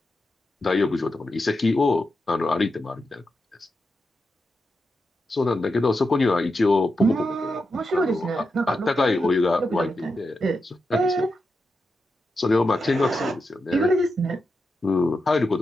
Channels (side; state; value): both; normal; correlation 0.88